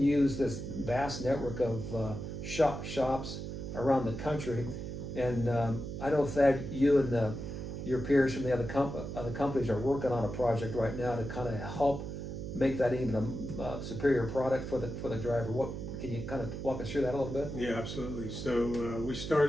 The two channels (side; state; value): right; noise; hum, 6 dB below the sound